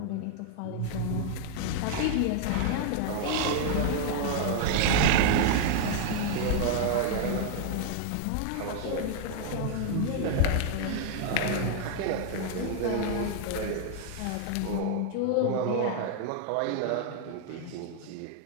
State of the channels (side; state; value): both; different; correlation 0.00